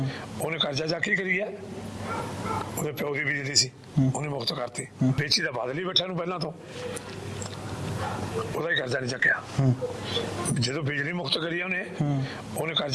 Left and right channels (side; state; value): both; identical; correlation 1.00